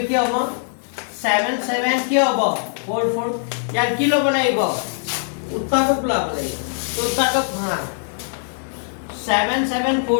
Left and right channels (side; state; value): right; silent; 65 dB below the other